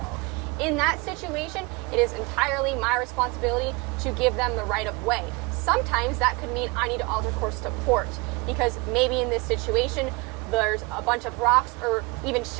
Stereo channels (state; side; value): quieter; left; 26.5 dB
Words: In that situation, it is entirely my responsibility to give them the right of way. Sometimes that could mean I need to alter course to port, because maybe in this situation there's a bunch of rocks or even